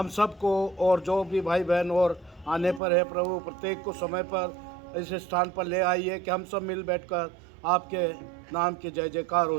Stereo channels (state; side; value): drops out; left; at 2.8 s